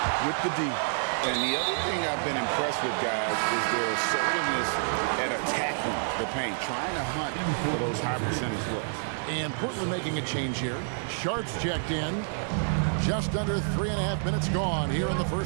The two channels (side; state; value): left; silent; digital silence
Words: with the D. And the other thing I've been impressed with, guys, is their assertiveness at attacking the paint, trying to hunt for those high percentage looks. And Portland making a change here. Sharps checked in. Just under 3.5 minutes gone here in the